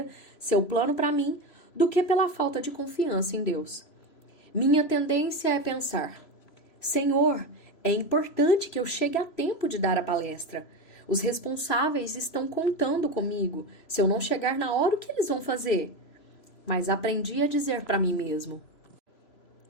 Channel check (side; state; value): right; late; 3.0 ms